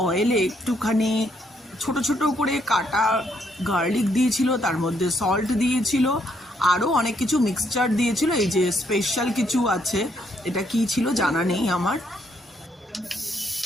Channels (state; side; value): normal; both; correlation 0.73